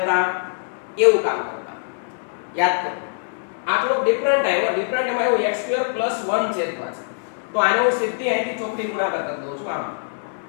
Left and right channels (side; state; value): right; silent; digital silence